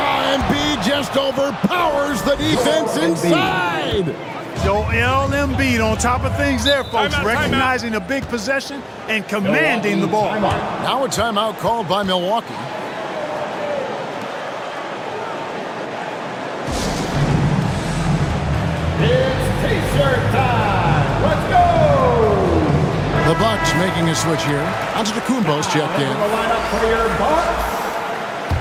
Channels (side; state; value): both; identical; correlation 1.00